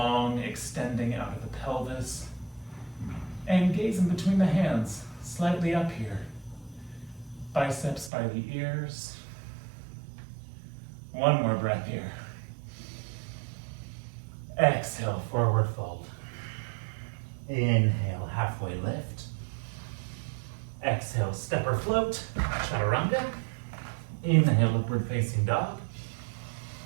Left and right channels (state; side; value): drops out; left; at 8.1 s